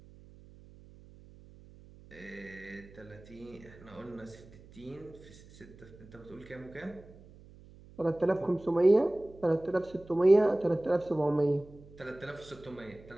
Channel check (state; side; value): noise; right; hum, 22 dB below the sound